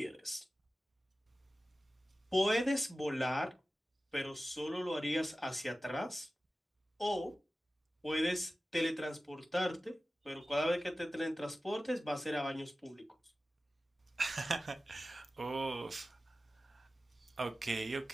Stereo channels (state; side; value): normal; both; correlation 0.95